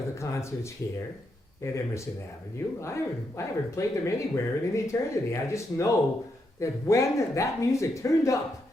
the concerts here at Emerson Avenue. I haven't played them anywhere in an eternity. I just know that when that music turned up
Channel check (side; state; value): both; normal; correlation 0.81